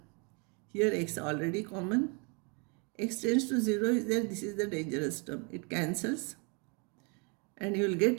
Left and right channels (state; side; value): quieter; left; 33.6 dB